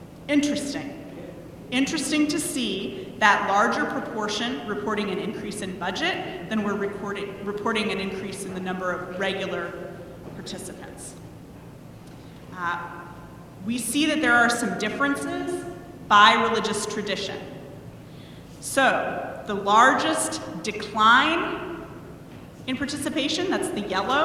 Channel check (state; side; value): identical; both; correlation 1.00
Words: Interesting. Interesting to see that larger proportion reporting an increase in budget than we're reporting an increase in the number of regular participants. We see that there are some differences by religious tradition. So, the largest decline in participation, that's the